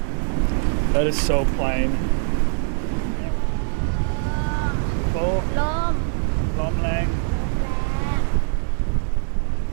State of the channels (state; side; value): silent; left; digital silence